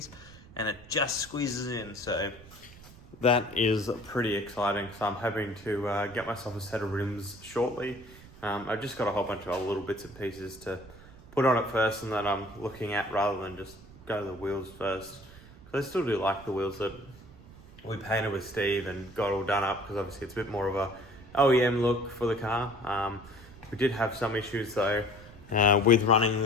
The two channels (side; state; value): right; noise; rumble, 20 dB below the sound